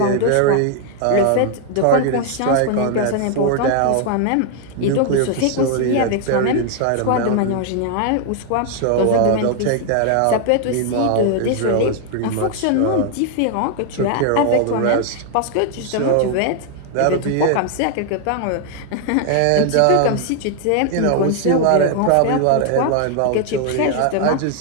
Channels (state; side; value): different; both; correlation 0.00